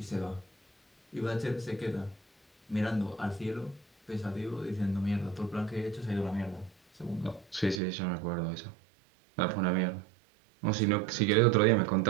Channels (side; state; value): left; drops out; at 7.8 s